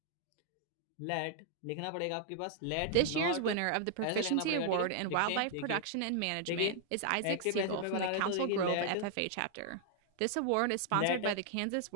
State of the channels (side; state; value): both; different; correlation 0.00